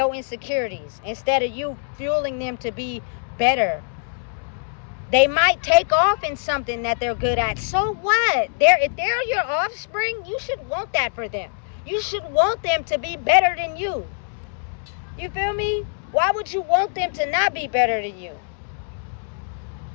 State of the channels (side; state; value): right; silent; digital silence